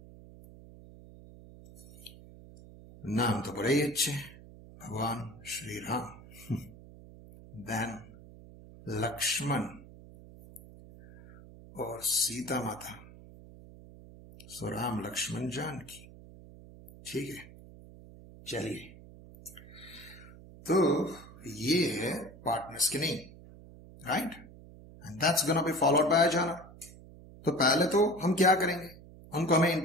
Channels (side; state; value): right; noise; hum, 19 dB below the sound